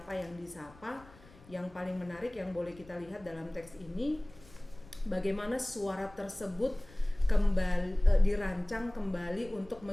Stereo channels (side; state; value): left; noise; rumble, 23 dB below the sound